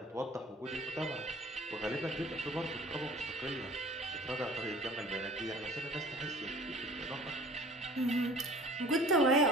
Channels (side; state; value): both; normal; correlation 0.47